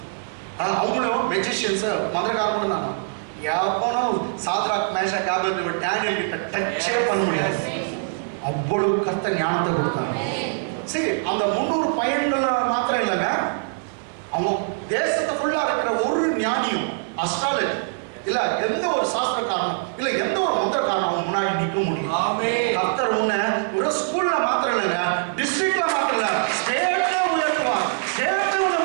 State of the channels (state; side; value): silent; left; 57 dB below the other